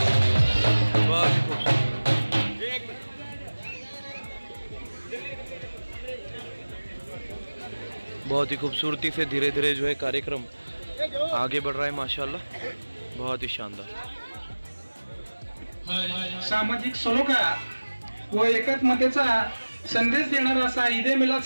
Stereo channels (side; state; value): both; inverted; correlation -1.00